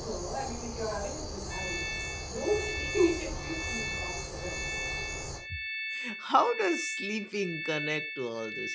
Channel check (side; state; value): both; identical; correlation 1.00